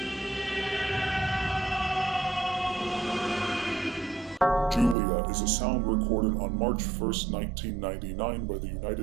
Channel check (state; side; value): drops out; left; at 5.0 s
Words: Julia is a sound recorded on March 1st, 1999 by the